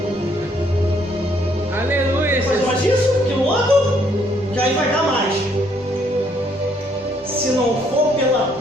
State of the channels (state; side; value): normal; both; correlation 0.68